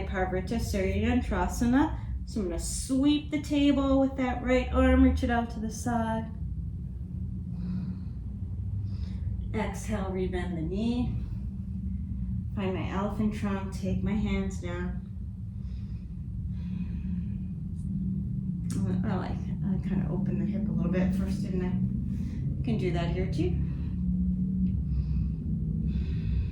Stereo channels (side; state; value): both; identical; correlation 1.00